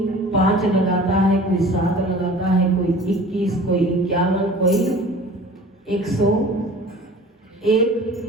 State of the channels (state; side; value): normal; both; correlation 0.43